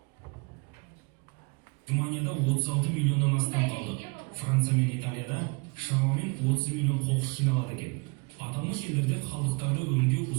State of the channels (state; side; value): quieter; left; 30.8 dB